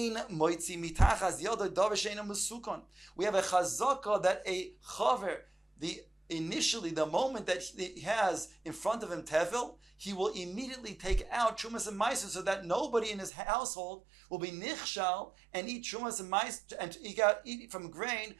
moitzi mitachas yado davar she'ein musukon. We have a chazaka that a chaver, initially, the moment that he has in front of him tevil, he will immediately take out trumas and maisros so that nobody in his household will be nichshal and eat trumas and maisros and eat from grain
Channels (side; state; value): left; drops out; at 13.3 s